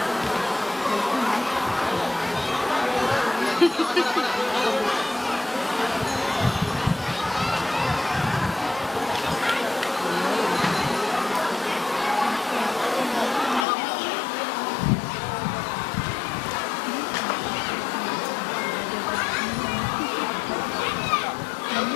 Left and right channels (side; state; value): right; drops out; at 13.7 s